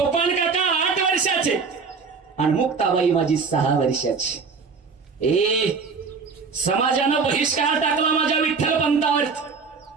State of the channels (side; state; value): left; quieter; 5.1 dB